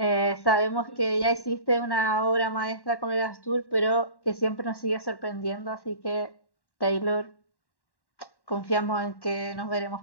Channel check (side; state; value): right; late; 1.1 ms